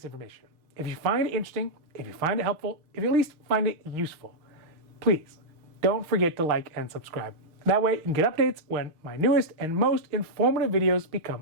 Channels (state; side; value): late; left; 6.4 ms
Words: information, if you find it interesting, if you find it helpful, if you at least find it useful, please don't forget to like and subscribe. That way you can get updates when my newest and most informative videos